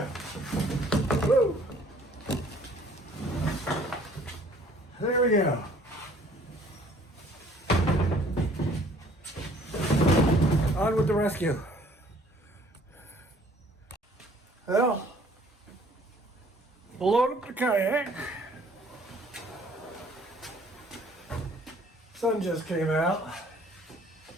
Whoa. There we go. On with the rescue. Well, load up the kayak. Sun just came out.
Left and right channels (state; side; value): normal; both; correlation 0.57